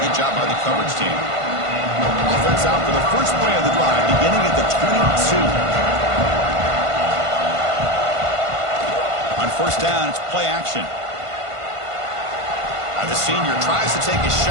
Good job by the coverage team. Offense out for the first play of the drive, beginning at the 22. On first down, it's play action. The senior tries to take a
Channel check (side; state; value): left; late; 1.5 ms